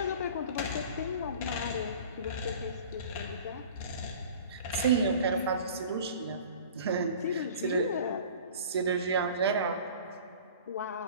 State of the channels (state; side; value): inverted; both; correlation -0.43